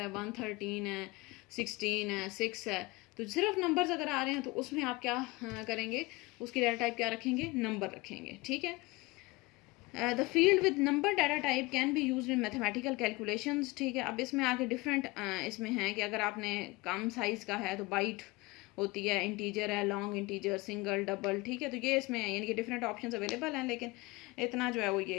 113 है, 16 है, 6 है, तो सिर्फ नंबर्स अगर आ रहे हैं तो उसमें आप क्या करेंगे, उसकी डाटा टाइप क्या रखेंगे, नंबर रखेंगे, ठीक है। The field with number data type can B use in mathematical calculations, ठीक है। अब इसमें आगे डिफरेंट इसमें है कि अगर आपने कम साइज़ का है तो बाइट होती है, इंटीजर है, लॉन्ग इंटीजर, सिंगल, डबल, ठीक है। तो ये इसमें यानी कि डिफरेंट ऑप्शंस अवेलेबल हैं, लेकिन इतना जो है वो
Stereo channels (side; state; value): right; quieter; 23.0 dB